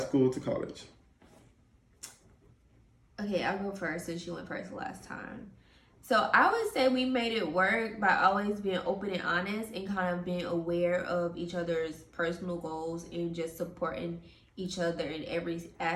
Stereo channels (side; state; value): both; identical; correlation 1.00